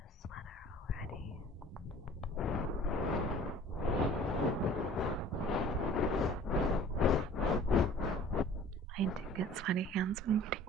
sweater already. I do get sweaty hands when eating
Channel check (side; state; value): both; normal; correlation 0.48